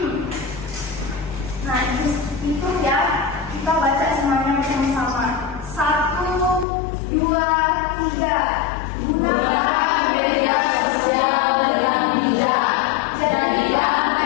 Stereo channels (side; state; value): right; drops out; at 6.7 s